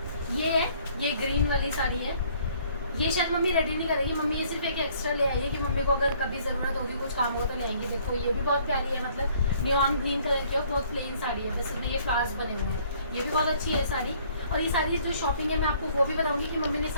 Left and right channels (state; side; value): inverted; both; correlation -0.60